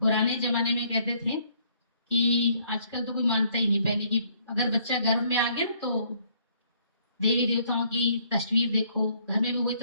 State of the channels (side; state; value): both; inverted; correlation -0.65